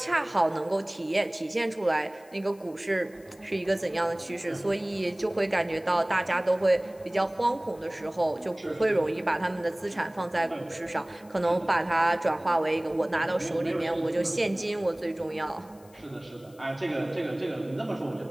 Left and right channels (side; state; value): left; noise; hiss, 27 dB below the sound